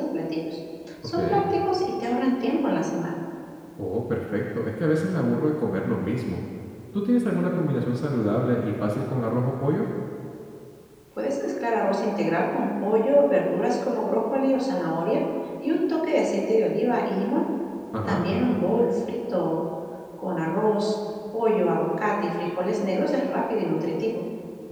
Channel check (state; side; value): identical; both; correlation 1.00